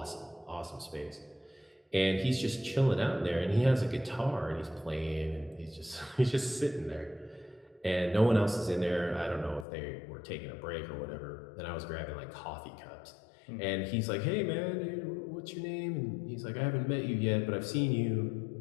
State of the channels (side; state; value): right; drops out; at 9.7 s